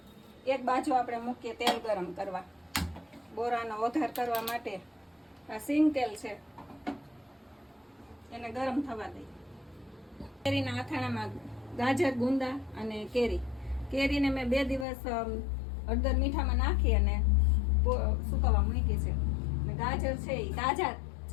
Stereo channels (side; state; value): right; drops out; at 14.9 s